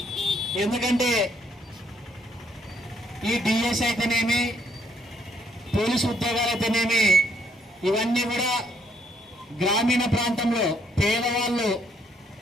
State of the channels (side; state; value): both; normal; correlation 0.69